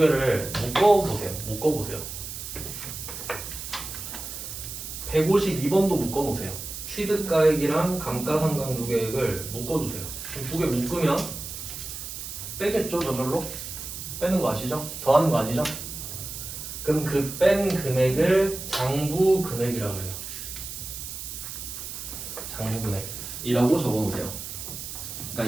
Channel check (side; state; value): right; noise; hiss, 8 dB below the sound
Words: 묶어보세요. 152번도 묶어놓으세요. 취득가액이랑 감가상각 누계액을 묶어주세요. 두 개 묶으면 빼겠죠, 저절로? 빼는 거 아시죠? 더하는 거 아니죠? 그럼 그 뺀 금액을 장부 금액이라고 해요. 장부 금액이라고 적어놓으세요.